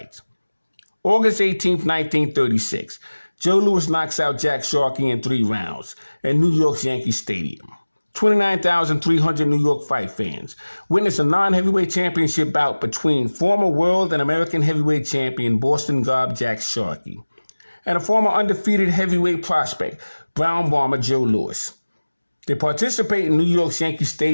August 18th, 1936, Joe Louis knocks out Jack Sharkey in 3 rounds at New York's Yankee Stadium. 29,300 New York fight fans witnessed a non-heavyweight championship bout between former world and American heavyweight champion Boston Gob Jack Sharkey and a former undefeated heavyweight prospect, Brown Bomber Joe Louis. They participate in New York's Yankee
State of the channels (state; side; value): inverted; both; correlation -1.00